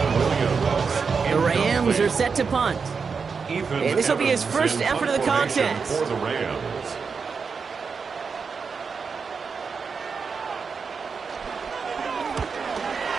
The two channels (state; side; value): quieter; left; 5.4 dB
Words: The Rams are set to punt. And this will be his first effort of the contest. For the Rams.